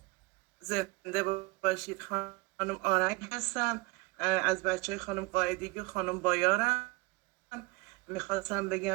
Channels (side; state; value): left; quieter; 23.0 dB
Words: زنده باشید. خانم آرنگ هستم، از بچه های خانم قاعدگی و خانم بایارم. میخواستم